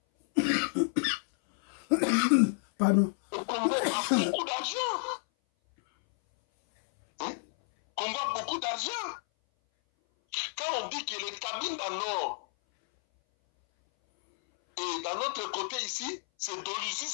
Pardon. Le Congo a beaucoup d'argent. Hein? Le Congo a beaucoup d'argent. Quand on dit que les Cabinda Nord et d'un autre côté ici, c'est Doluzi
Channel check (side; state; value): right; silent; 58 dB below the other